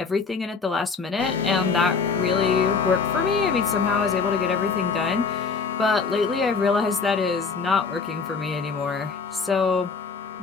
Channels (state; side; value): quieter; right; 5.0 dB